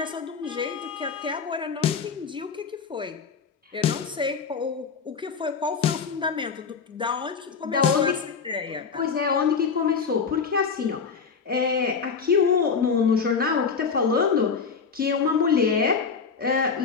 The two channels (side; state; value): right; quieter; 5.7 dB